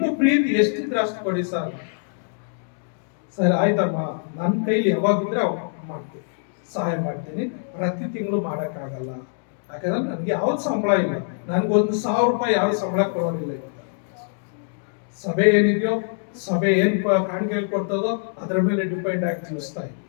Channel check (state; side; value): silent; right; 63 dB below the other